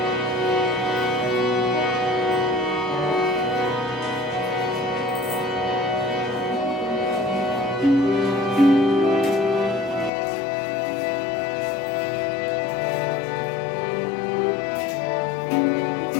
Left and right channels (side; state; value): right; drops out; at 10.1 s